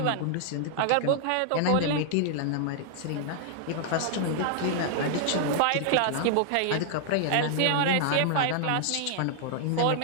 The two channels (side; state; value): both; different; correlation -0.01